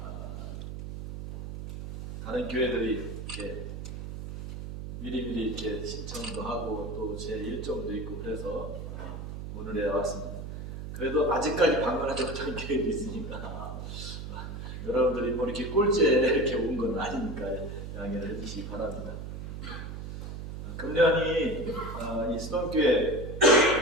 다른 교회들이 이렇게 미리미리 이렇게 신청도 하고 또 제 일정도 있고 그래서 오늘에 왔습니다. 그래도 아직까지 방문하지 못한 교회도 있으니까 여러분들이 뭐 이렇게 꼴찌에 이렇게 온 건 아니니까 양해를 해주시기 바랍니다. 금년이 이 수동교회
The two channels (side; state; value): right; noise; hum, 8 dB below the sound